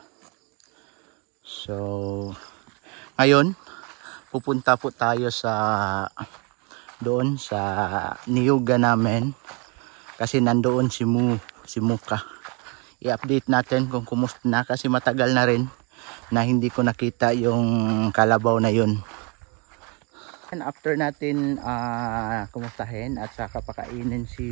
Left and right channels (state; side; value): quieter; left; 31.6 dB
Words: So ngayon pupunta po tayo doon sa niyuga namin kasi nandoon si Muka. I-update natin kung kumusta na kasi matagal na rin na hindi ko nakita yung kalabaw na yun. And after natin kumustahin at saka pakainin